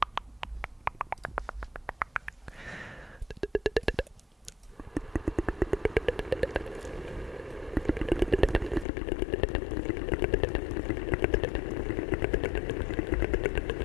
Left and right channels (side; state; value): right; drops out; at 8.8 s